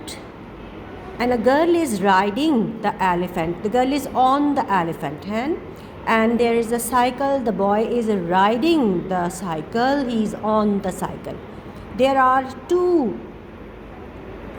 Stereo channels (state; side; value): identical; both; correlation 1.00